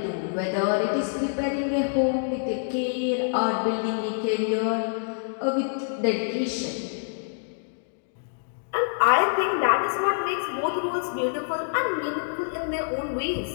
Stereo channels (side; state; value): right; silent; digital silence